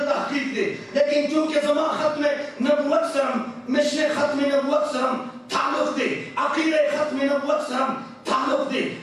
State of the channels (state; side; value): identical; both; correlation 1.00